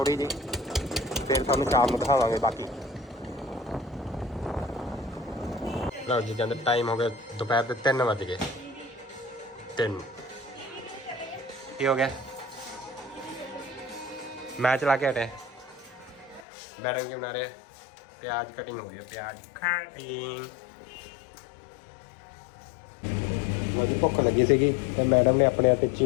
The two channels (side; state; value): right; drops out; at 16.4 s